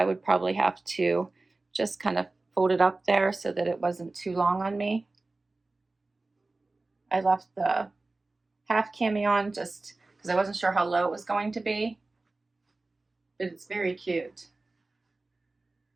would probably have to just kind of fold it up there so that it wasn't too long on me. I left the half cami on just because I wasn't sure how low it was going to be, but it's very cute.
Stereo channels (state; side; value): quieter; left; 3.3 dB